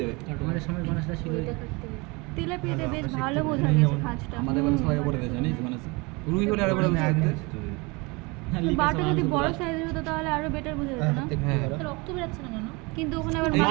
যাবে। আমাদের সময় মানুষরা ছিল তেলাপিয়াতে বেশ ভালো বোঝা গেছে খাঁজটা। আমাদের বাড়ি সবাই করে দেয় জানিস মানে রুই হলে আরো বড় বুঝতে পারতে। বাটা যদি বড় সাইজের হতো তাহলে আরো বেটার বোঝা যেত না? হ্যাঁ, রক্ত বেরাচ্ছে না কেন? কিন্তু ওখানে আবার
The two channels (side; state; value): left; quieter; 26.9 dB